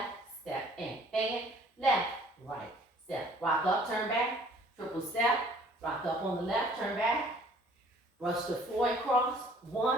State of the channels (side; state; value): both; normal; correlation 0.56